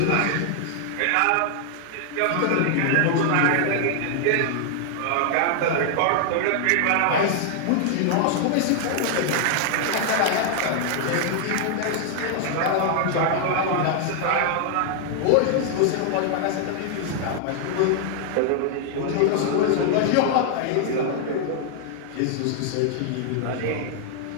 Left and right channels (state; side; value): different; both; correlation 0.00